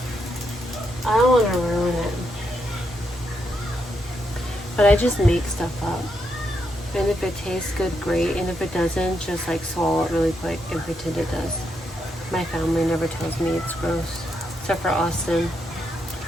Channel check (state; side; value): normal; both; correlation 0.80